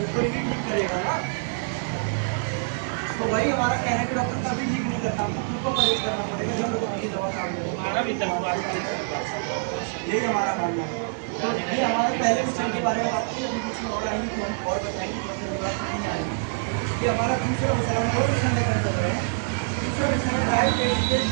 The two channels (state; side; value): silent; left; 61 dB below the other